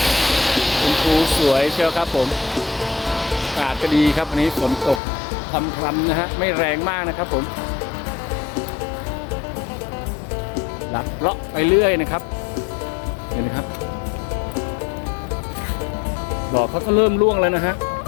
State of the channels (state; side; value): drops out; right; at 5.0 s